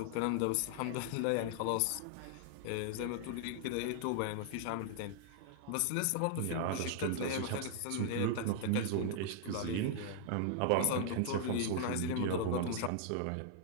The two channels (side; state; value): both; different; correlation 0.00